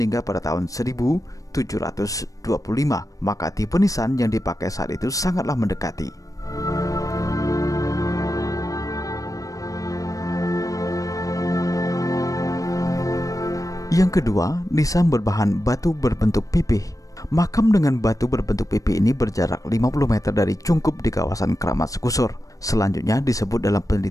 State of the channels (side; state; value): right; late; 0.16 ms